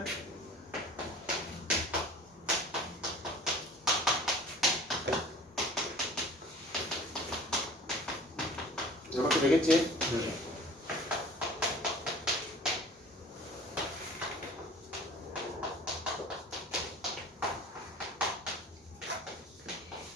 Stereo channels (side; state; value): both; normal; correlation 0.45